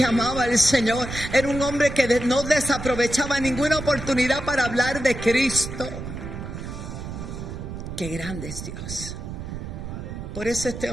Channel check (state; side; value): noise; right; rumble, 8 dB below the sound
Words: amaba al Señor, era un hombre que no desaprovechaba ninguna oportunidad para hablar de Cristo. Qué grande es Dios. Por eso este